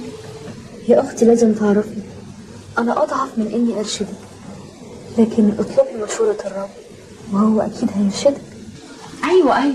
يا أختي لازم تعرفي أنا أضعف من إني أرشدك، لكن اطلبي مشورة الرب وهو أكيد هيرشدك. ايوه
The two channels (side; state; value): both; identical; correlation 1.00